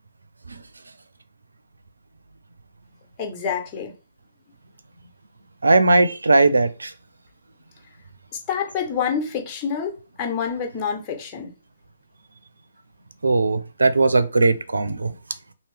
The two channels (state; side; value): inverted; both; correlation -0.82